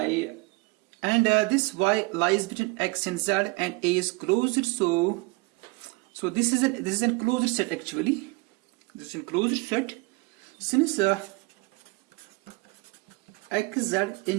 and this Y lies between X and Z, and A is closed. So this is a closed set actually. This is a closed set. Since XZ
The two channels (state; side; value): quieter; left; 25.6 dB